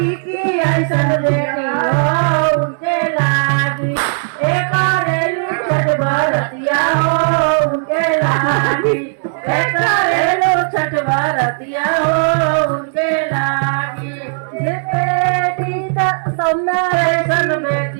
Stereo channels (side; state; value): left; silent; digital silence